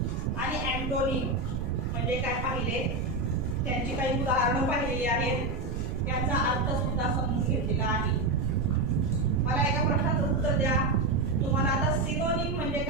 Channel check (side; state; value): right; noise; rumble, 3 dB below the sound